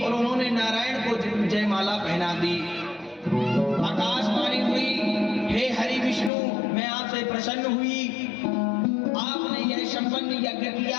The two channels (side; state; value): right; drops out; at 6.3 s